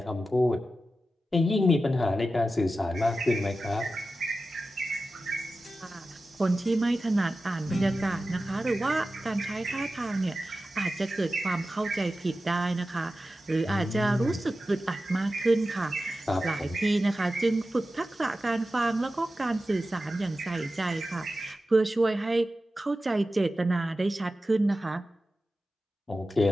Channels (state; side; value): normal; both; correlation 0.93